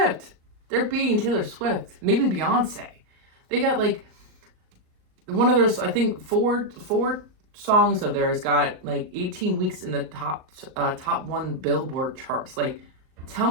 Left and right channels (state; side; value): late; left; 38 ms